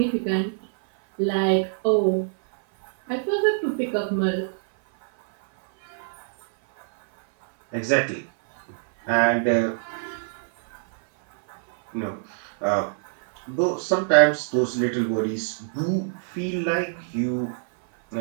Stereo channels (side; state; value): left; silent; 57 dB below the other